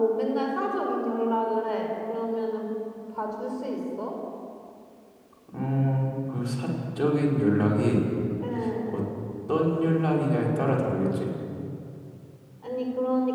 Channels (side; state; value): both; identical; correlation 1.00